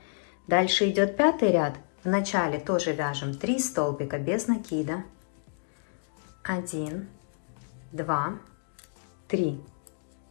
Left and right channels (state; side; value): silent; right; digital silence